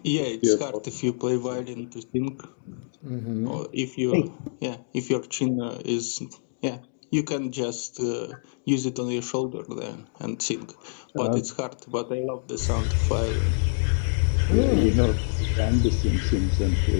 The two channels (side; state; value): right; silent; digital silence